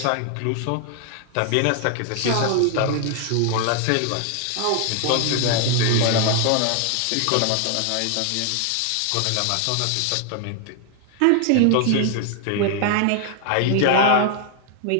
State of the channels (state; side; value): different; both; correlation 0.00